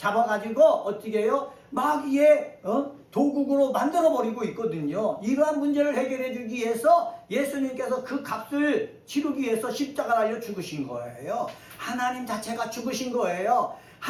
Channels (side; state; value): both; identical; correlation 1.00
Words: 어떻게 해요? 마귀의 도국으로 만들어버리고 있거든요. 이러한 문제를 해결해 주기 위해서 예수님께서 그 값을 치르기 위해서 십자가 달려 죽으신 거예요. 하나님 자체가 죽으신 거예요.